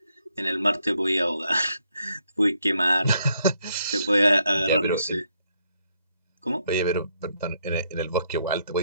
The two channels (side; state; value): both; inverted; correlation -0.74